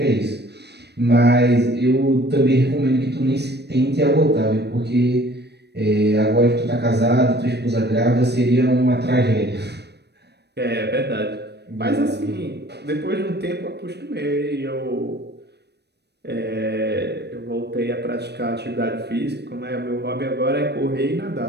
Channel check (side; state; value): left; late; 0.49 ms